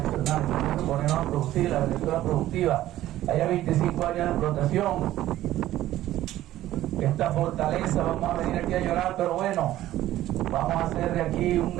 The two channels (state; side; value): quieter; left; 14.2 dB